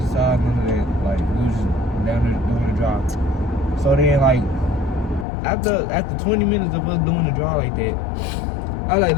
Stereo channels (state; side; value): drops out; right; at 5.2 s